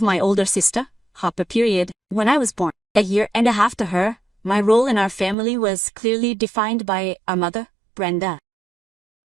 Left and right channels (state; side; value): drops out; left; at 5.4 s